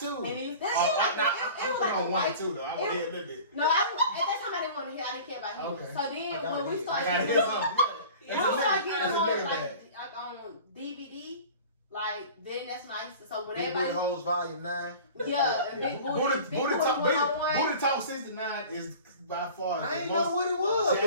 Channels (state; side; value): inverted; both; correlation -0.41